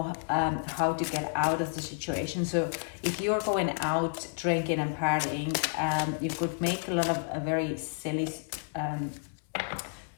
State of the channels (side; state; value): right; silent; 57 dB below the other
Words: how to get out of the situation. So if you're going out drinking and partying, you could make a lot of very silly